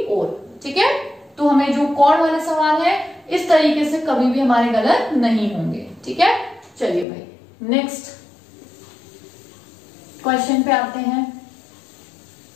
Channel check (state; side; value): drops out; right; at 7.1 s